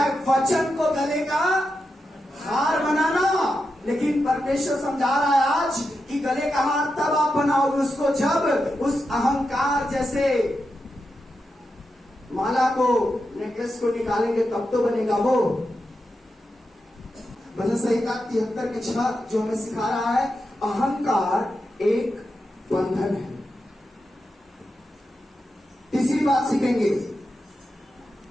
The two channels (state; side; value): normal; both; correlation 0.88